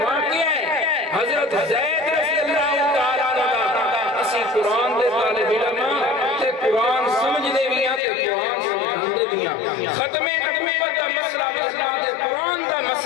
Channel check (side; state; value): right; drops out; at 8.0 s